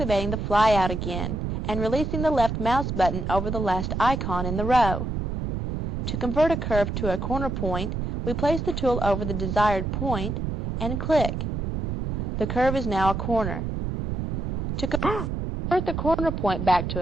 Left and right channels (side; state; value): right; noise; rumble, 3 dB below the sound